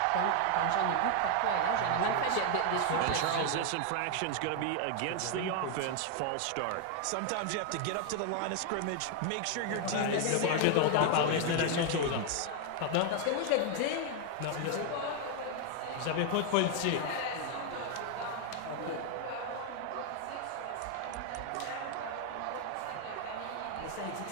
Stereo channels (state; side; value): different; both; correlation 0.00